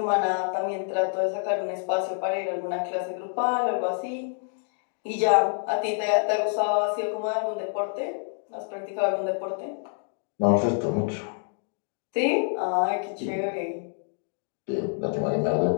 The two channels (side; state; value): right; silent; 60 dB below the other